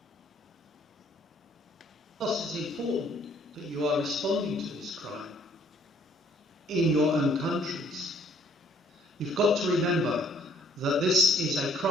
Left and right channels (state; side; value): normal; both; correlation 0.62